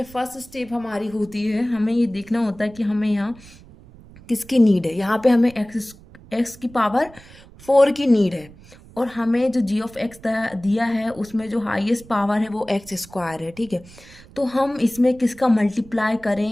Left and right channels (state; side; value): noise; right; rumble, 22 dB below the sound